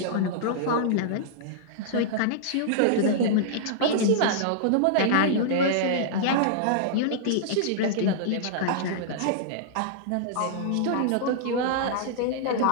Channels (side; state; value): both; different; correlation -0.02